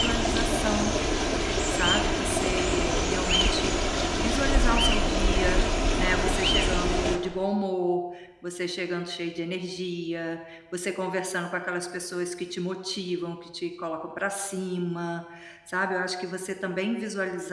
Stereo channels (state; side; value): identical; both; correlation 1.00